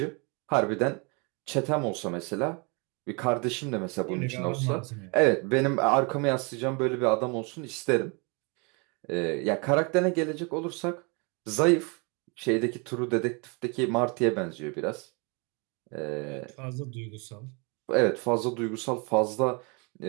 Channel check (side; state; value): left; quieter; 31.7 dB